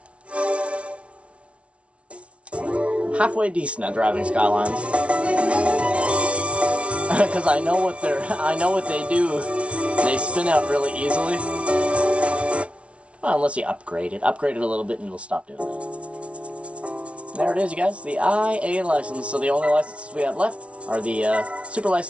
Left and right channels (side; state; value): left; late; 0.061 ms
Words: Halfway decent at driving Skylines, because I know what they do. They spin out really easily. Well, unless you upgrade it a little bit, and it'll stop doing that. There it is, you guys. The IA license. So the only licenses we have left are the Super